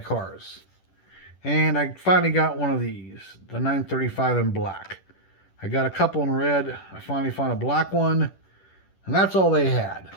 cars. And I finally got one of these, the 935 in black. I got a couple in red. I finally found a black one, and that's all they had.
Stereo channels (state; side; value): late; right; 10 ms